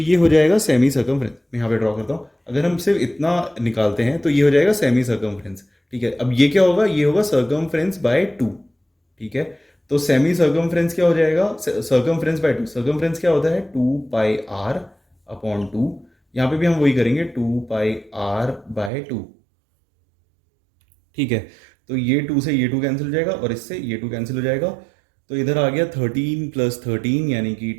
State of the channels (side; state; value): left; drops out; at 18.9 s